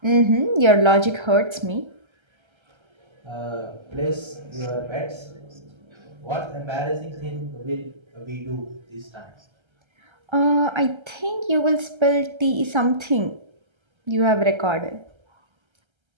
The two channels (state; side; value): late; left; 1.3 ms